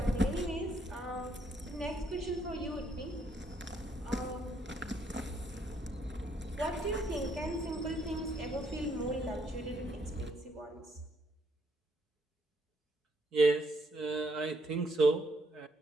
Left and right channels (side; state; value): both; normal; correlation 0.72